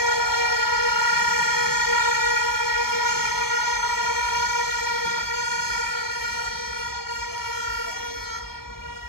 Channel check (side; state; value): right; late; 0.94 ms